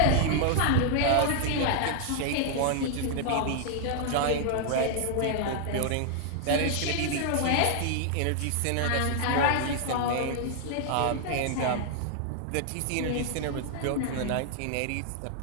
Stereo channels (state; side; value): different; both; correlation 0.00